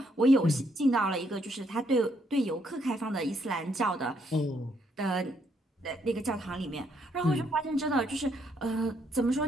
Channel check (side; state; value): both; normal; correlation 0.73